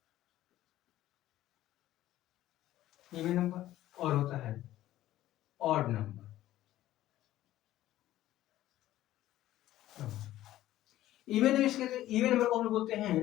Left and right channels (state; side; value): quieter; right; 14.2 dB